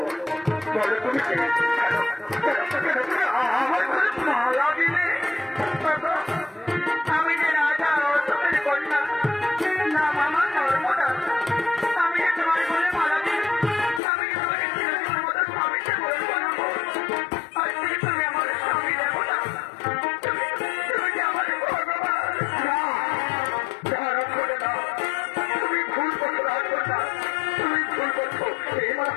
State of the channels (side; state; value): right; drops out; at 14.0 s